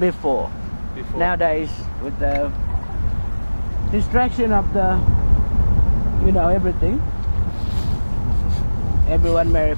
Before. Nowadays, with the distraction of the, you know, everything, everyone marry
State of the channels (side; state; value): both; inverted; correlation -1.00